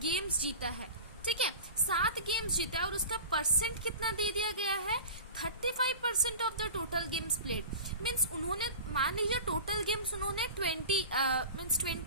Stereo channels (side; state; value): both; inverted; correlation -0.36